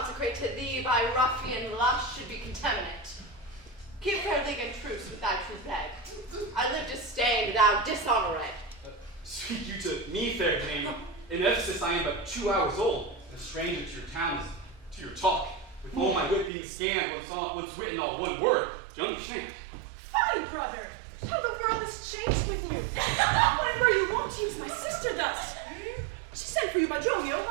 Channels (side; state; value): left; drops out; at 16.5 s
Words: to thee by ruffian lust should be contaminate. Keep fair league and truce with thy true bed. I live disdained, thou dishonored. Speak you to me, fair dame. In Ephesus I am but 2 hours old, and a stranger to your town is to your talk. With all my wit being scanned, what's written all one word. Do you understand? Fine, brother. How the world has changed with you. When were you wont to use my sister thus? She sent for you by Dromio